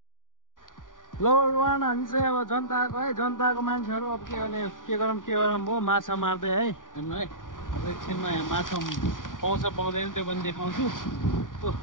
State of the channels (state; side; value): late; right; 0.89 ms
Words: लो वान हामी चाहिँ अब जनताको है जनताको मान्छेहरू अब के गरौँ म माछा मार्दै है हेर्नु है अब एकछिनमा यहाँ माछा पाउँछ पाउँदैन त्यो पनि देखाउँछु